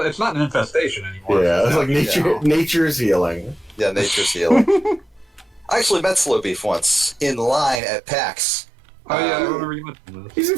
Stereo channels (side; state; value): left; drops out; at 7.8 s